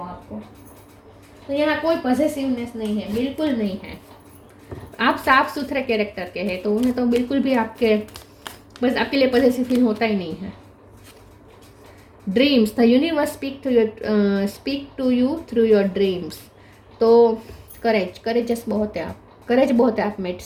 आपको। तो यहाँ कोई पॉजिटिवनेस नहीं है, बिल्कुल नहीं है। आप साफ सुथरे कैरेक्टर के हैं, तो उन्हें तो बिल्कुल भी आपके लिए पॉजिटिव फील होता ही नहीं है। Dreams, the universe speak to you through your dreams. तो करेजस बहुत है आप, करेज बहुत है आप में,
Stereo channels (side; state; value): both; identical; correlation 1.00